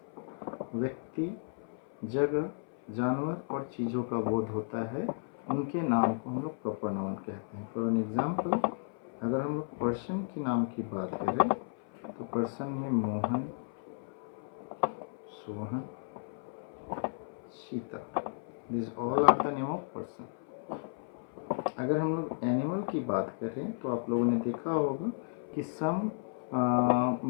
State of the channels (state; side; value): silent; right; 55 dB below the other